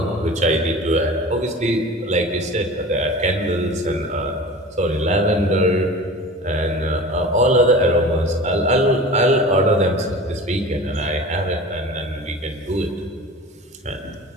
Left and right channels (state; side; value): normal; both; correlation 0.37